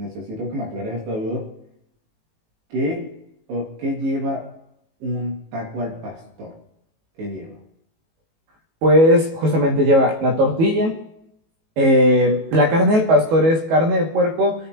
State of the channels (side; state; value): left; late; 19 ms